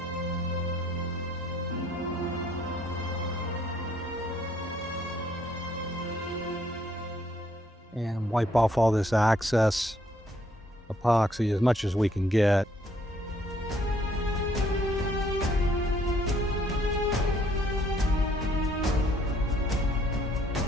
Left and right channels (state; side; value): normal; both; correlation 0.66